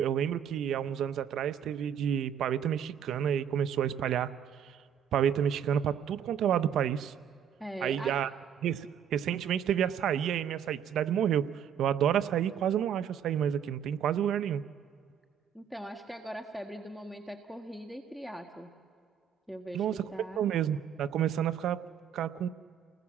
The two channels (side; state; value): left; quieter; 8.7 dB